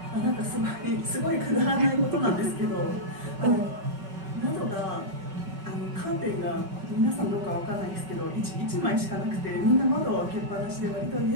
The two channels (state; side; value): late; left; 5.3 ms